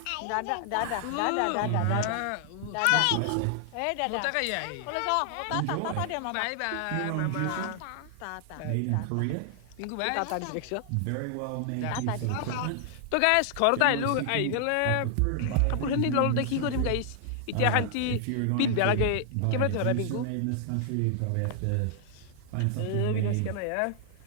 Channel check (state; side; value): different; both; correlation 0.00